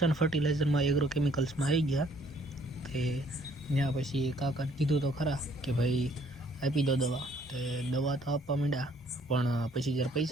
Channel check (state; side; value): normal; both; correlation 0.62